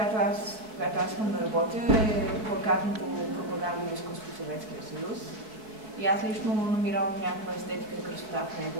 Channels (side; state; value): left; late; 4.6 ms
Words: аз искам да работя, е плакатното пропагандно изкуство в Съветския съюз. И аз лично намирам някаква естетика и красота в него